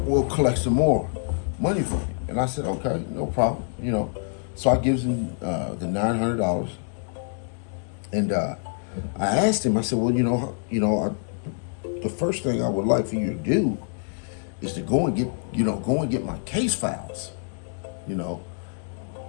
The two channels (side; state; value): right; silent; 61 dB below the other